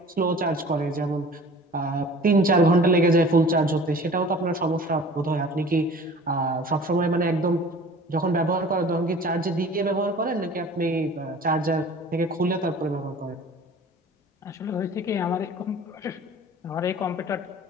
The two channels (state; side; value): normal; both; correlation 0.45